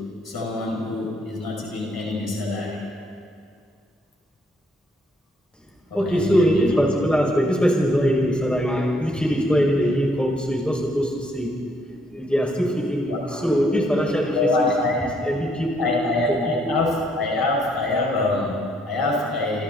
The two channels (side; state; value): both; normal; correlation 0.70